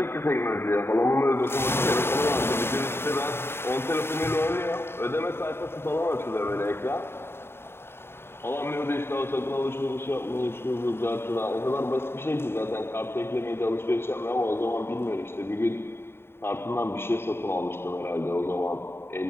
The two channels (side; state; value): right; late; 0.11 ms